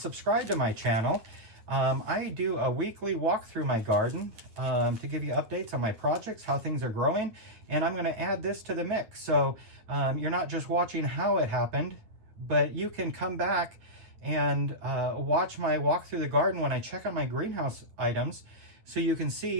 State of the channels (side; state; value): left; late; 9.2 ms